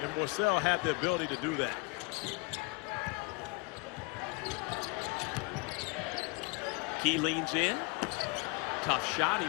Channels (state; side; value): quieter; right; 25.1 dB